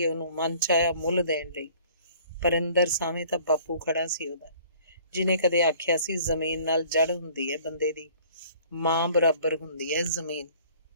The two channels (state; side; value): inverted; both; correlation -0.53